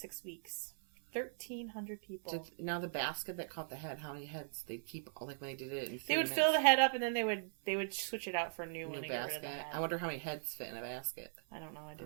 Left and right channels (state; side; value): silent; left; 51 dB below the other